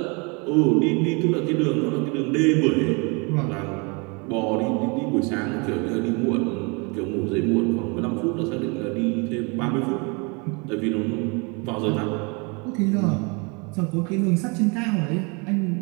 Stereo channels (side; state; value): left; quieter; 31.1 dB